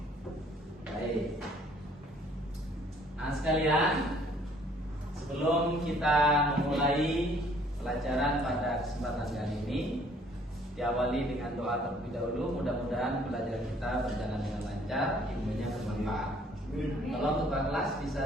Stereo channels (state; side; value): normal; both; correlation 0.60